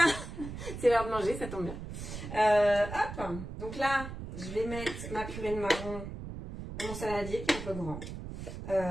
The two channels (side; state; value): right; noise; rumble, 9 dB below the sound